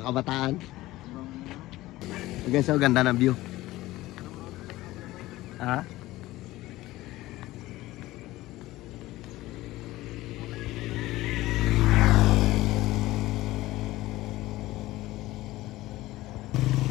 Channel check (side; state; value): right; quieter; 17.5 dB